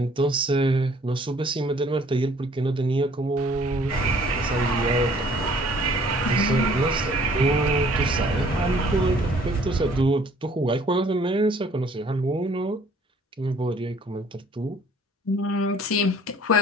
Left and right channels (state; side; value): normal; both; correlation 0.57